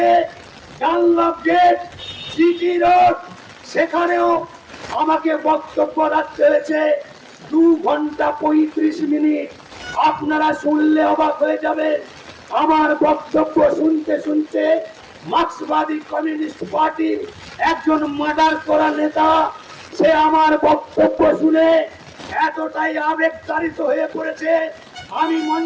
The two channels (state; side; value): identical; both; correlation 1.00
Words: ডানলপ গেট, সিটি রোড, সেখানেও আমাকে বক্তব্য রাখতে হয়েছে 2 ঘন্টা 35 মিনিট। আপনারা শুনলে অবাক হয়ে যাবেন। আমার বক্তব্য শুনতে শুনতে মার্ক্সবাদী কমিউনিস্ট পার্টির একজন মার্ডার করা নেতা, সে আমার বক্তব্য শুনে এতটাই আবেগতাড়িত হয়ে পড়েছে, আমি